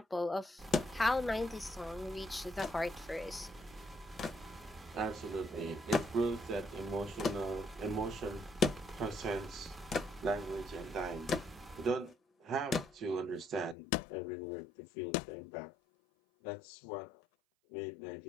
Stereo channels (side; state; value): right; drops out; at 13.8 s